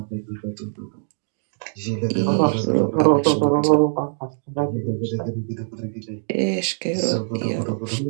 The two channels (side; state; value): left; silent; digital silence